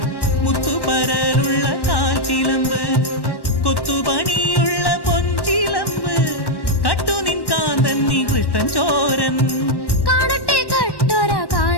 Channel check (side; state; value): right; late; 1.1 ms